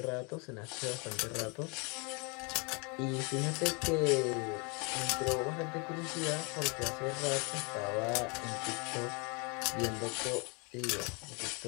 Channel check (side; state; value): right; quieter; 32.4 dB